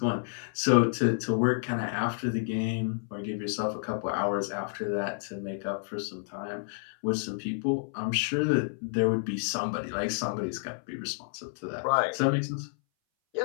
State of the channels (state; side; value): silent; right; 58 dB below the other